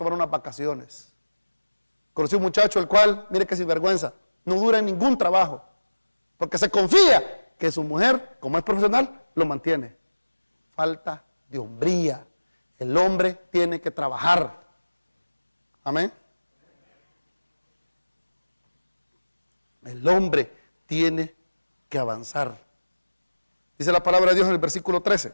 unas vacaciones. Conocí un muchacho el cual, mire que sinvergüenza, no dura en ningún trabajo, porque se confía que su mujer, como es profesional, lo mantiene. Falta de hombría. El hombre tiene que trabajar. Amén. El hombre tiene que avanzar. Dice la palabra de Dios en el versículo 13.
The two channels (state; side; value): inverted; both; correlation -1.00